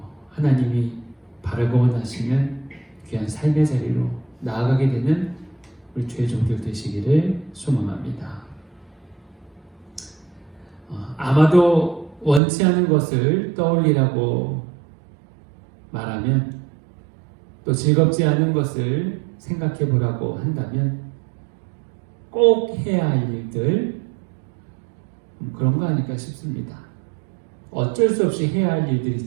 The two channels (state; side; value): drops out; left; at 12.4 s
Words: 하나님이 바라고 원하시는 귀한 삶의 자리로 나아가게 되는 우리 죄종들 되시기를 소망합니다. 아마도 원치 않은 것을 떠올리라고 말하면, 또 즐겁지 않은 것을 생각해 보라고 한다면 꼭 해야 할 일들, 그런 거 아닐까 싶습니다. 어쩔 수 없이 해야 할 일들